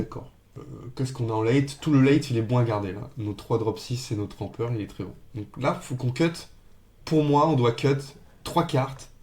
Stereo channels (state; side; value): identical; both; correlation 1.00